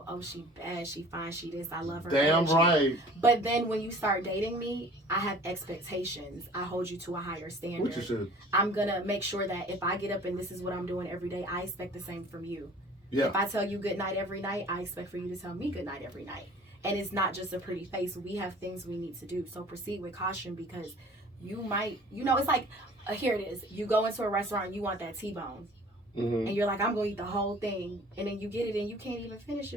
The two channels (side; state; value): both; normal; correlation 0.48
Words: oh, she bad, she fine, she this, I love her. Damn right. But then when you start dating me, I have expectations. I hold you to a higher standard. Which you should. I'm going to make sure that if I get up and this is what I'm doing every day, I expect the same from you. Yeah. If I tell you good night every night, I expect for you to tell me good night every night. And it's not just a pretty face. We have things we need to do. So proceed with caution, because you might, it's like, here it is. You go into a restaurant and you want that T-bone. And you're like, I'm going to eat the whole thing. And then you get it and you can't even finish